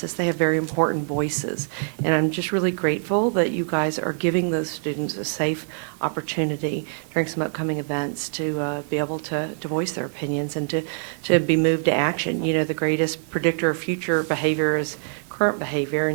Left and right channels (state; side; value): silent; left; digital silence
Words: they have very important voices, and I'm just really grateful that you guys are giving those students a safe opportunity during some upcoming events to be able to voice their opinions and to be moved to action. You know, the greatest predictor of future behavior is current behavior,